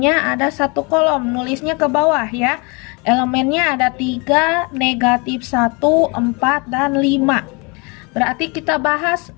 ada satu kolom. Nulisnya ke bawah ya. Elemennya ada 3, negatif 1, 4, dan 5. Berarti kita bahas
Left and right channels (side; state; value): right; quieter; 29.9 dB